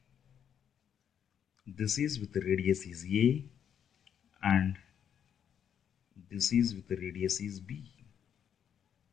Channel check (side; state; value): right; quieter; 8.7 dB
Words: this is with the radius is a and this is with the radius is b.